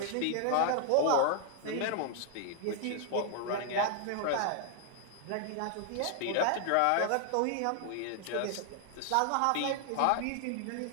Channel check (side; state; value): both; different; correlation 0.00